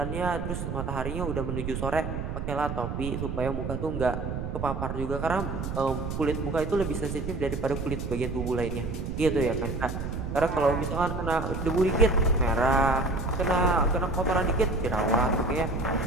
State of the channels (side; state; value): right; noise; rumble, 4 dB below the sound